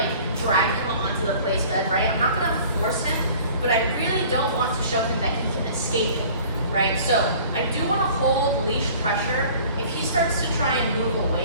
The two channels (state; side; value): inverted; both; correlation -0.48